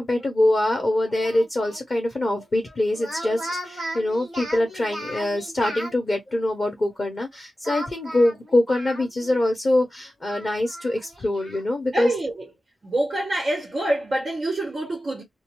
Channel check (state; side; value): normal; both; correlation 0.94